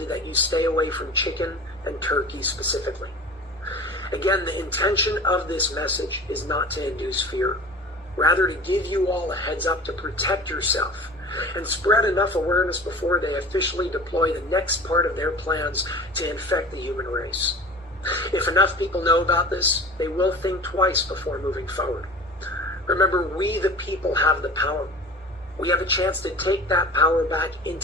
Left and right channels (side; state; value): both; normal; correlation 0.38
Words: that you stay away from chicken and turkey specifically. Again, the intention of this message is not to induce fear, rather to give you all a heads up to protect yourself and spread enough awareness before they officially deploy the next part of their plans to infect the human race. If enough people know about this, they will think twice before moving forward. Remember, we the people have the power. We have a chance to take that power back